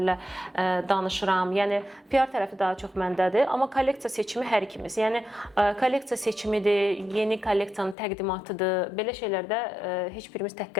danışıram. Yəni PR tərəfi daha çox məndədir, amma kolleksiya seçimi hər ikimiz. Yəni kolleksiya seçimidir, yeni kolleksiyanın təqdimatıdır. Belə şeylərdə heç birimiz tək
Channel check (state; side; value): drops out; right; at 8.0 s